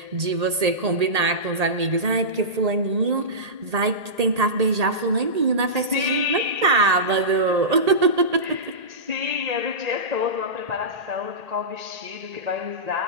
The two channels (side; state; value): left; late; 1.8 ms